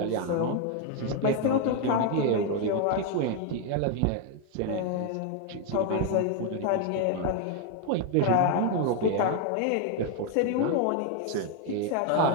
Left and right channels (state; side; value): different; both; correlation 0.01